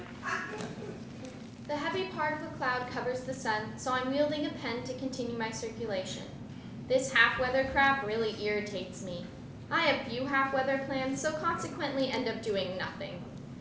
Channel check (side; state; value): both; identical; correlation 1.00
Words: The heavy part of the cloud covers the sun, so I'm wielding a pen to continue my circulation. This half-weather crap really irritates me. I have few half-weather plans, so consequently end up doing nothing.